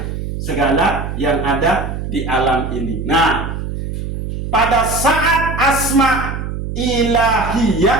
Segala yang ada di alam ini. Nah, pada saat asma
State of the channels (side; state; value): right; noise; hum, 5 dB below the sound